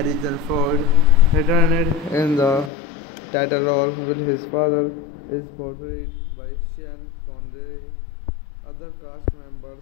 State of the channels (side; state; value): right; drops out; at 2.7 s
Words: Ford returned in the title role while his father is portrayed by Sean Connery. Other cast members